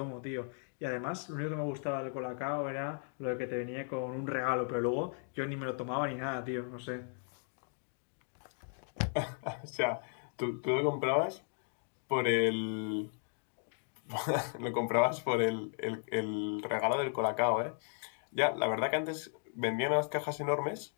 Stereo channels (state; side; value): silent; right; 54 dB below the other